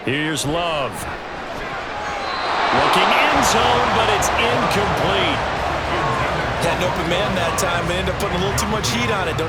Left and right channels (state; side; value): identical; both; correlation 1.00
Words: Here's Love. Looking end zone, but it's incomplete. Had an open man that time, but ended up putting a little too much heat on it,